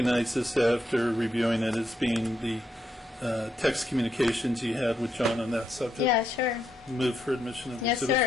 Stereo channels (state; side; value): normal; both; correlation 0.79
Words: this after reviewing it as being the text communications you had with John on that subject? Yeah, sure. Move for admission of Yes, Exhibit